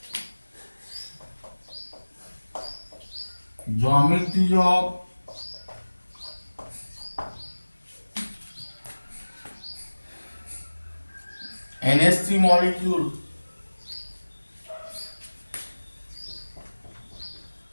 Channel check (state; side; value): inverted; both; correlation -1.00